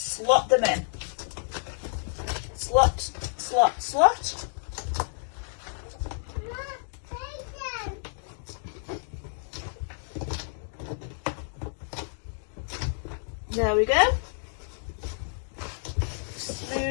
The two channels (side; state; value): right; silent; digital silence